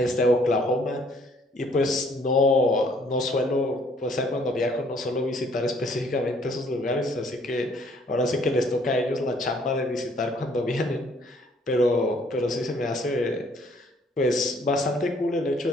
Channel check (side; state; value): both; normal; correlation 0.62